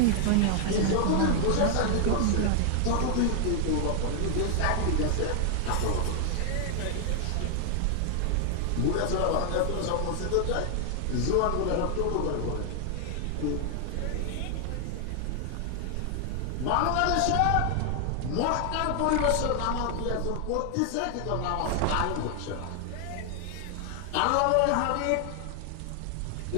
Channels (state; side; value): different; both; correlation 0.00